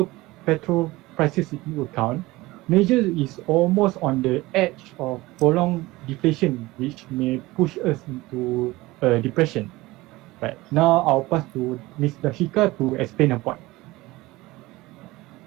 petrol prices into account, Malaysia is almost on the edge of prolonged deflation, which may push us into a depression. Right, now I'll pass to Ms. DHARSHIKA to explain her point.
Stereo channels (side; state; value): left; quieter; 19.9 dB